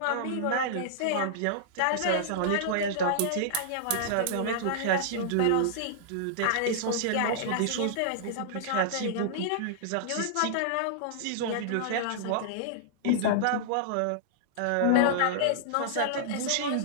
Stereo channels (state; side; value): different; both; correlation -0.01